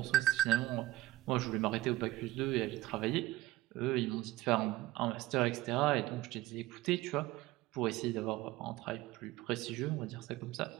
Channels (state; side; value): quieter; left; 17.2 dB